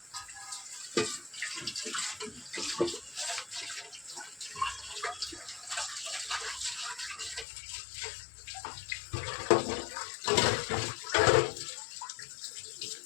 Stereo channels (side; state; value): right; drops out; at 7.5 s